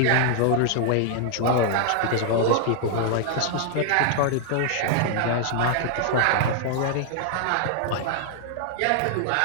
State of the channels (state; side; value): different; both; correlation 0.00